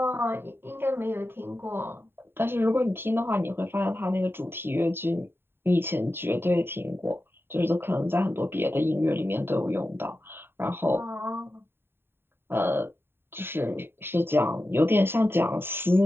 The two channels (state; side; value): late; left; 0.11 ms